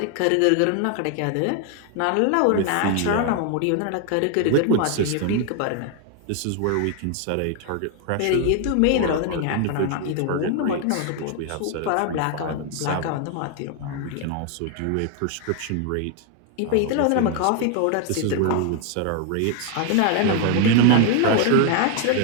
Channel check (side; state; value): both; different; correlation 0.01